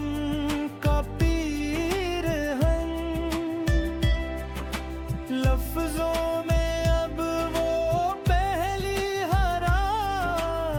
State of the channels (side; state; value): both; identical; correlation 1.00